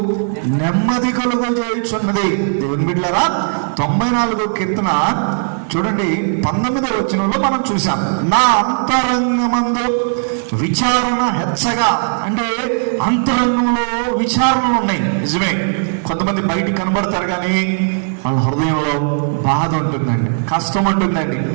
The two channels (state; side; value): silent; left; 68 dB below the other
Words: నెమ్మది కలుగజేయుచున్నది. దేవుని బిడ్డలారా 94వ కీర్తన చూడండి 19వ వచనంలో మనం చూసాం. నా అంతరంగమందు విచారణ హెచ్చగా, అంటే అంతరంగంలో విచారణలు ఉన్నాయి. నిజమే, కొంతమంది బయటికి కనబడతారు కానీ వాళ్ళ హృదయంలో బాధ ఉంటుందండి, కష్టం ఉంటుందండి,